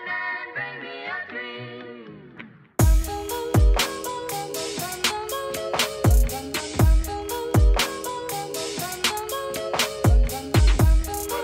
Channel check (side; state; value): both; identical; correlation 1.00